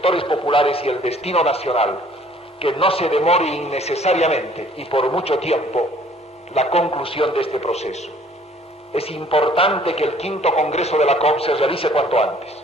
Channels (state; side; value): normal; both; correlation 0.57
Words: populares y el destino nacional, que no se demore innecesariamente y por mucho tiempo la conclusión de este proceso. Es importante que el quinto Congreso de la COP se realice cuanto antes